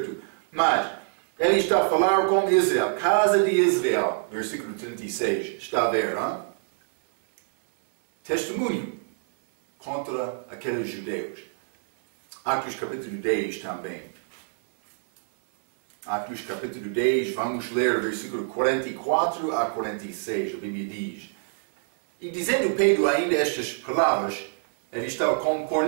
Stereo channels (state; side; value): silent; left; 61 dB below the other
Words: Mas ele está a falar com Israel, casa de Israel, versículo 36. Está a ver, hein? Testemunho contra aqueles judeus. Atos capítulo 10 também. Atos capítulo 10, vamos ler versículo 44 a 46, a Bíblia diz: E dizendo Pedro ainda estas palavras, ele estava com